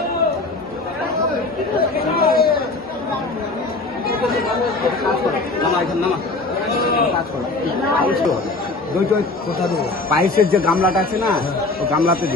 পায়েসের যে গামলাটা আছে না, ও গামলাতে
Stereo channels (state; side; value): quieter; right; 3.3 dB